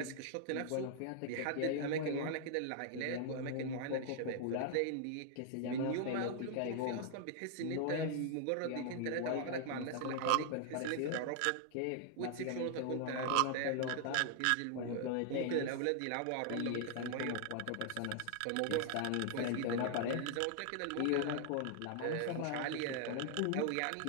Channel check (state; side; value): different; both; correlation -0.01